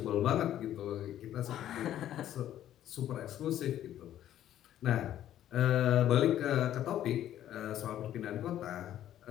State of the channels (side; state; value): right; quieter; 11.8 dB